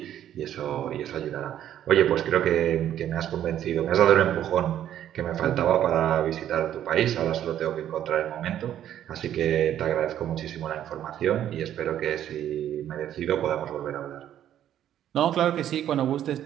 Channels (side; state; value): left; quieter; 11.0 dB